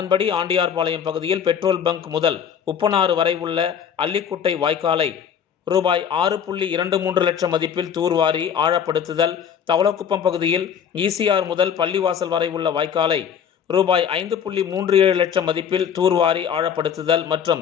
ஆண்டியார்பாளையம் பகுதியில் பெட்ரோல் பங்க் முதல் உப்பனாறு வரை உள்ள அல்லிக்குட்டை வாய்க்காலை ரூபாய் 6.23 லட்சம் மதிப்பில் தூர்வாரி ஆழப்படுத்துதல், தவளக்குப்பம் பகுதியில் ECR முதல் பள்ளிவாசல் வரை உள்ள வாய்க்காலை ரூபாய் 5.37 லட்சம் மதிப்பில் தூர்வாரி ஆழப்படுத்துதல் மற்றும்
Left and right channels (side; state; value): right; quieter; 7.9 dB